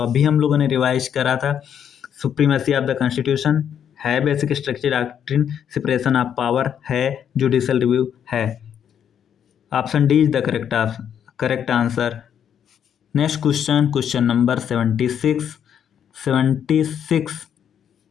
हम लोगों ने रिवाइज करा था। सुप्रीमेसी ऑफ द कॉन्स्टिट्यूशन है basic structure doctrine, separation of power है, जुडिशियल रिव्यू है। Option D is the correct answer. Next question, question number 76।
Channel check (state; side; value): quieter; right; 8.7 dB